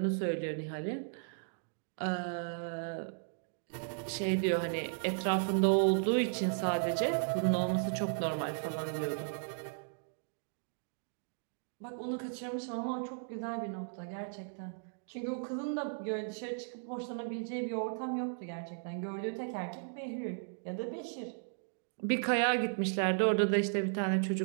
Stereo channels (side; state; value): left; silent; digital silence